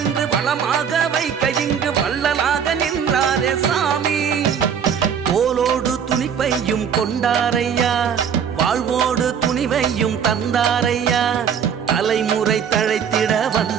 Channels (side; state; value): left; quieter; 7.6 dB